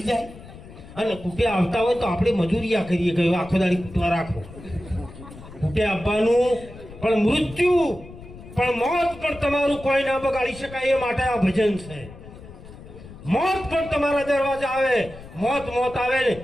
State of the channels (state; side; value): noise; left; rumble, 17 dB below the sound